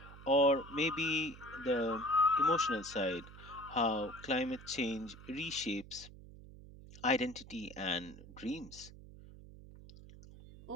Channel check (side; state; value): right; noise; hum, 17 dB below the sound